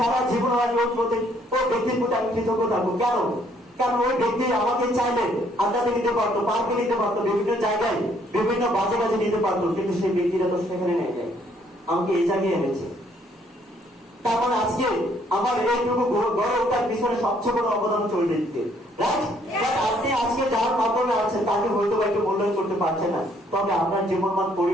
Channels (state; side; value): normal; both; correlation 0.66